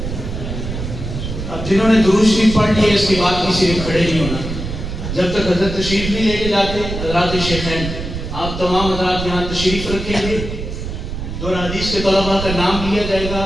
اب جنہوں نے درود شریف پڑھ لیے اس کے بعد کسی نے کھڑے نہیں ہونا جب تک حضرت تشریف نہیں لے کے جاتے۔ حضرات شیخین، آپ تمام حضرات یہاں تشریف رکھیں گے، دور حدیث کے طلباء کا نام لیا جائے گا،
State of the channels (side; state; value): right; noise; rumble, 6 dB below the sound